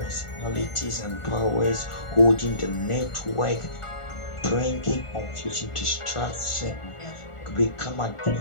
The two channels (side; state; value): right; late; 1.4 ms